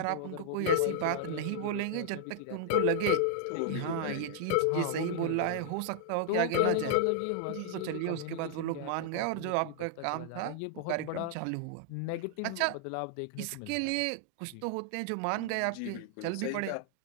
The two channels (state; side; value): different; both; correlation -0.01